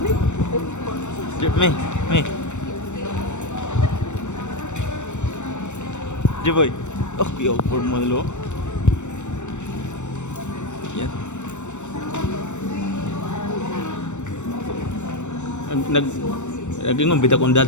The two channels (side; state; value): right; late; 0.84 ms